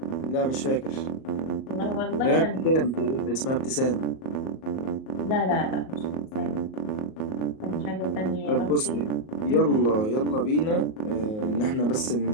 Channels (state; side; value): late; right; 38 ms